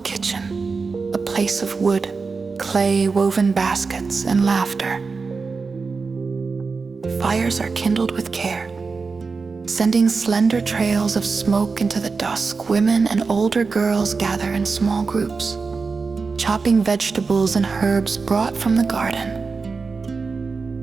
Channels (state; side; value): quieter; left; 4.6 dB